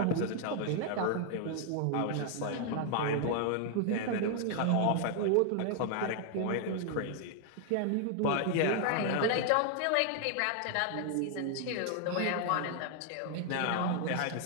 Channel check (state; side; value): different; both; correlation 0.00